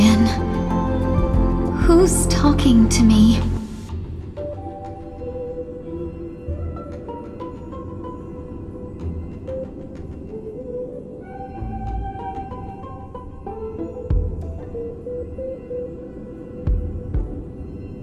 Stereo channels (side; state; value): both; identical; correlation 1.00